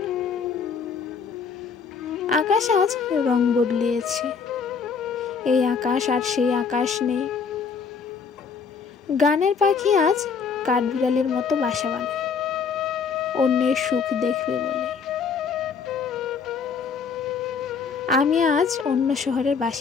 আকাশ আজ রং বদলিয়েছে, এই আকাশ আর সেই আকাশ নেই। গানের পাখি আজ কাঠবিড়ালির মতো বাসা বানায়, অন্যের সুখ দেখবে বলে। আমি আজ অন্য শহরের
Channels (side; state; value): right; quieter; 5.7 dB